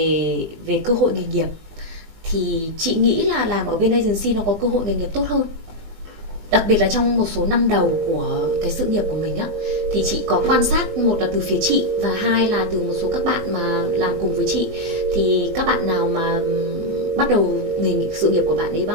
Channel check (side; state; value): left; late; 20 ms